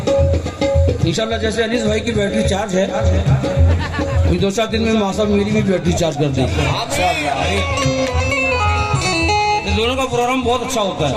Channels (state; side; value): identical; both; correlation 1.00